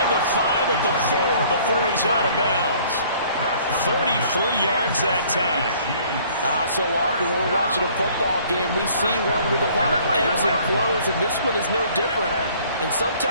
the 5 at the 4 before he's out of bounds. 33 yards that time. So often when we're watching a football game, we see one with a lot of ebbs and flows, and this one is no different. And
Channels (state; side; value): inverted; both; correlation -0.57